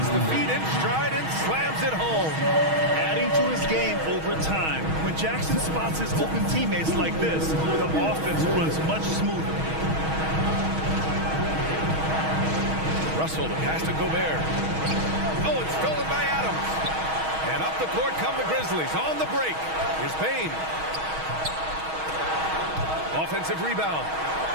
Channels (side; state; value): left; late; 6.3 ms